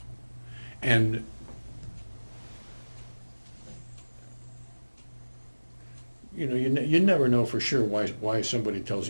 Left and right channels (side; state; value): both; inverted; correlation -1.00